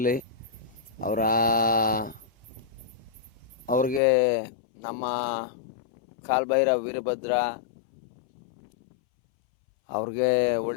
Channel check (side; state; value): right; drops out; at 4.0 s